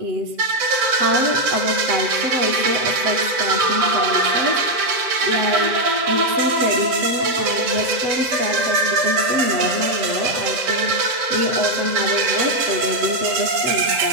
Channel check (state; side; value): late; left; 7.6 ms